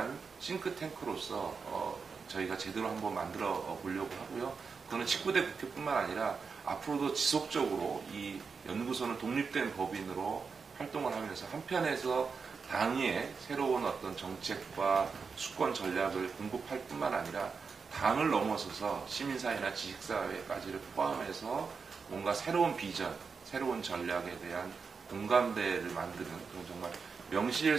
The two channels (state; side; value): quieter; left; 5.3 dB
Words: 싱크탱크로서 저희가 제대로 한번 만들어 보려고 하고요. 그거는 19대 국회뿐만 아니라 앞으로도 지속적으로 이 연구소는 독립된 법인으로 활동을 하면서 한편에서 당의 새로운 어떤 정책과 수권 전략을 공급할 뿐만 아니라 당을 넘어서서 시민사회나 지식사회까지를 포함해서 뭔가 새로운 비전, 새로운 전략에 대한 공감대를 만드는 그런 정말